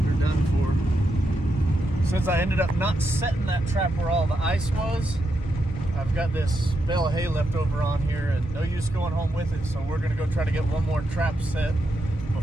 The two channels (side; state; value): both; normal; correlation 0.83